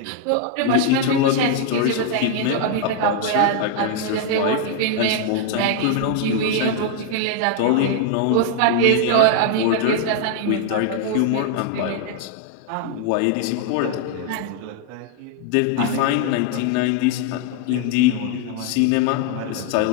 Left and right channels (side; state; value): both; different; correlation 0.00